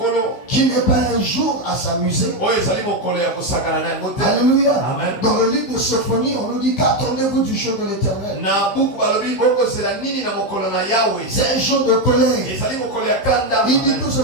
qui n'est pas un jour à s'amuser. Alléluia. Amen. Dans le livre de Sophonie, on nous dit qu'attendez-vous du jour de l'Éternel. C'est un jour de colère. Il dit que ce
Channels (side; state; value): right; late; 15 ms